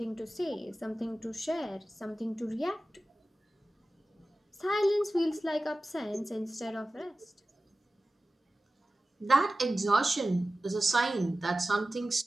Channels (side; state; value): both; normal; correlation 0.96